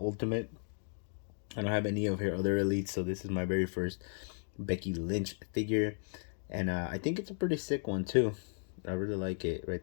I don't have any of her other elites, so this is my very first Becky Lynch figure. And I think it's a pretty sick one too. I really like it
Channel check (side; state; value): right; silent; 54 dB below the other